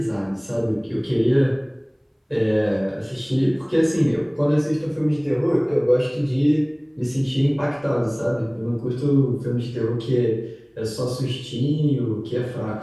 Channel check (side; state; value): both; identical; correlation 1.00